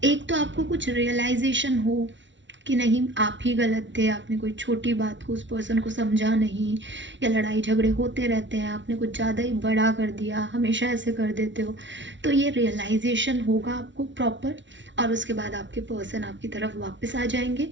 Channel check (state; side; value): late; left; 0.54 ms